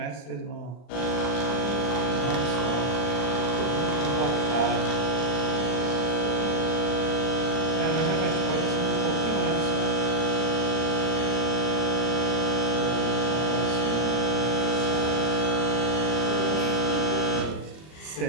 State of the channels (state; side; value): late; right; 39 ms